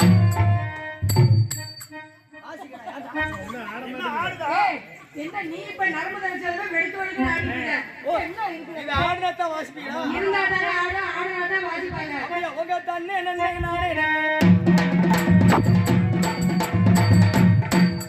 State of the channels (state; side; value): identical; both; correlation 1.00